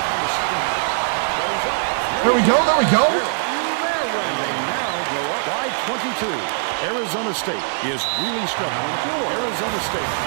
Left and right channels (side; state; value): left; silent; 63 dB below the other